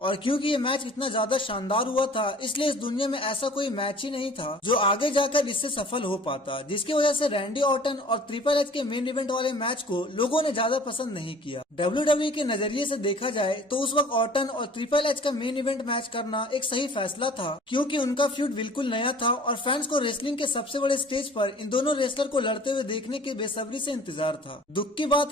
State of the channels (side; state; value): both; normal; correlation 0.49